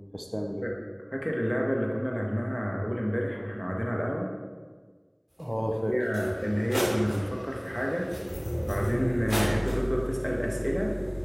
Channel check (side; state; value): both; identical; correlation 1.00